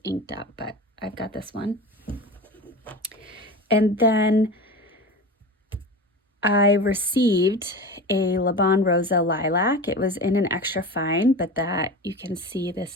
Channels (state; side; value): normal; both; correlation 0.30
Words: inked up, but I've got this one. And then I received a Le Bon Rosa Lilac. It was in an extra fine, but that you can see this